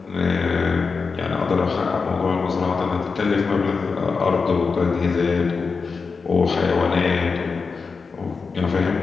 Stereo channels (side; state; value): right; quieter; 4.8 dB